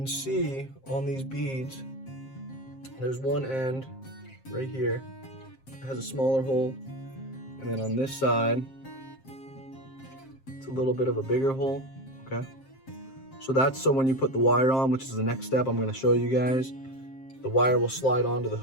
see on these beads, there's one end right here. It has a smaller hole. And then on this side, it's a little bit of a bigger hole, okay? So that's so when you put the wire on, which is the next step I'm gonna show you guys, the wire will slide onto the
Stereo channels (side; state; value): right; late; 7.5 ms